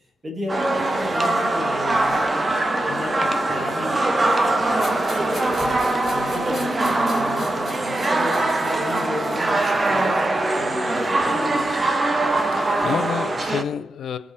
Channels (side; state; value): both; normal; correlation 0.89